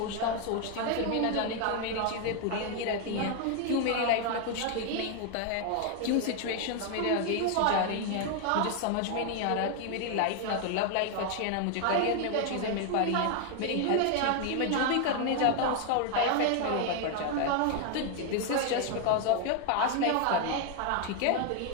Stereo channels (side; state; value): both; different; correlation 0.00